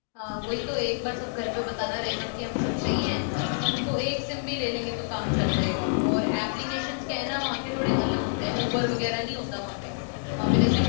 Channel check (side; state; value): right; silent; digital silence